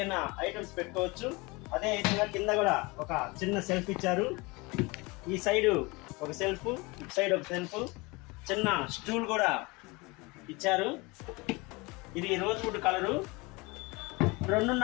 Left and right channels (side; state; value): right; quieter; 25.4 dB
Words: ఐటమ్స్ పెట్టుకోవచ్చు. అదే విధంగా కింద కూడా ఒక చిన్న సెల్ఫ్ ఇచ్చారు. ఈ సైడు ఒక సెల్ఫ్, ఇటు సైడ్ ఒక సెల్ఫ్, చిన్న స్టూల్ కూడా ఇచ్చారు. ఇది రోజ్ వుడ్ కలరు.